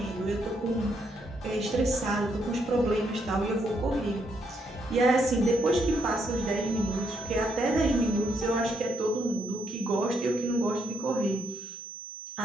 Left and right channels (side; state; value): both; normal; correlation 0.75